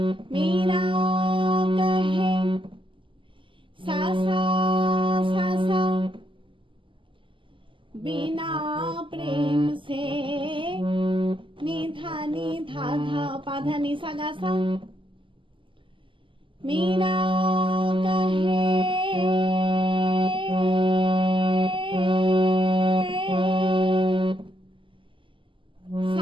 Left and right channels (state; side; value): late; left; 0.25 ms